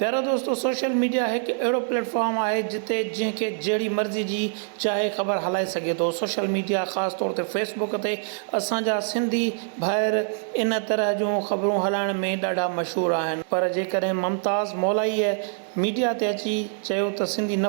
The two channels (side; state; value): left; silent; digital silence